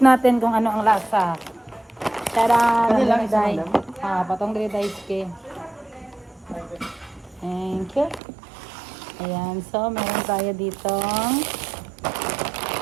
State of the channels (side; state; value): left; drops out; at 8.2 s